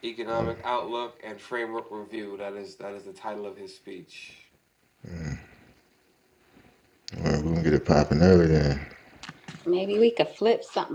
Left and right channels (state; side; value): identical; both; correlation 1.00